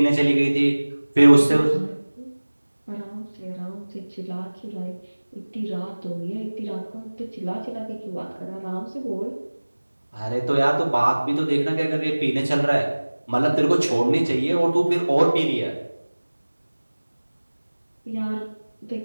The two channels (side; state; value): both; inverted; correlation -1.00